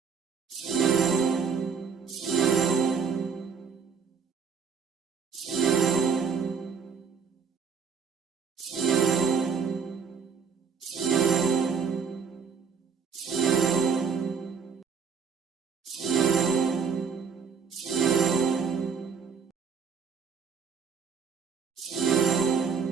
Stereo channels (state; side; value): quieter; left; 6.0 dB